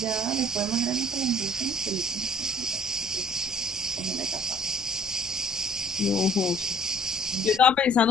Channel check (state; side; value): noise; left; rumble, 23 dB below the sound